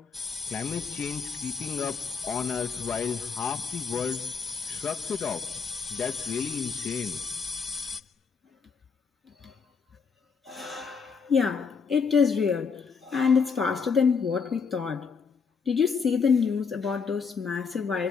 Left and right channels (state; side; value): quieter; right; 5.6 dB